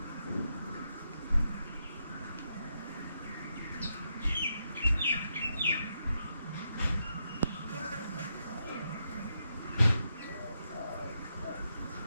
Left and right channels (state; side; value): inverted; both; correlation -0.82